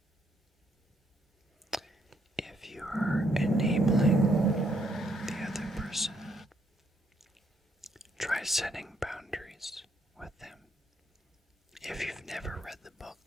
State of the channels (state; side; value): normal; both; correlation 0.73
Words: If you are enabling the other person, try setting boundaries with them. If you've never read the